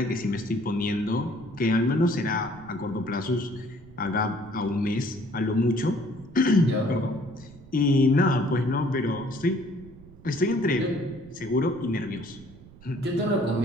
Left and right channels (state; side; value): noise; right; rumble, 20 dB below the sound